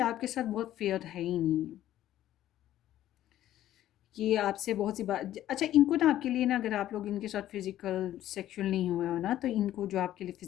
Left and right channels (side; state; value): right; quieter; 13.0 dB